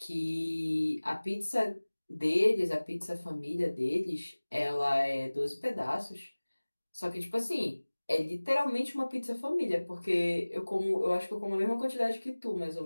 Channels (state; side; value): inverted; both; correlation -1.00